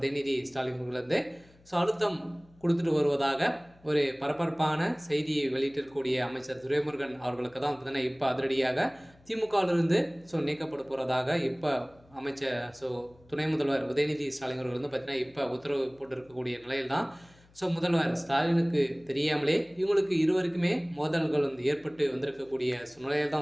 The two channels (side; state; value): left; noise; hum, 28 dB below the sound